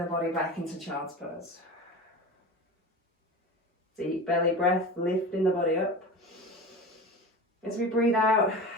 body back into child's pose. Deep belly breath, lifting the body up. As we breathe out,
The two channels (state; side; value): normal; both; correlation 0.31